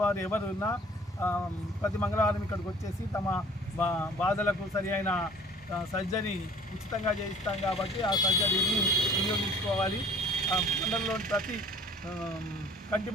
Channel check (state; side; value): normal; both; correlation 0.52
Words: ఎవరు ఉన్నా ప్రతి మంగళవారం ఇక్కడికి వచ్చేసి తమ బాధలకు సరి అయిన సర్జరీ ఉచితంగా చేయిస్తాం కాబట్టి ఆ సర్జరీని వినియోగించుకోవాలి. మండలంలోని ప్రతి కంటి